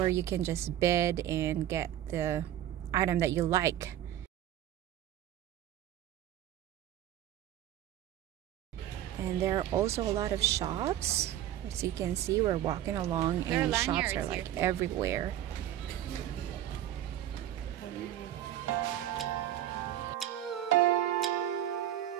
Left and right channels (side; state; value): left; quieter; 12.1 dB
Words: you can just bid and get the item that you like. And there are also a lot of shops. As you can see, we're walking along and shops are like everywhere.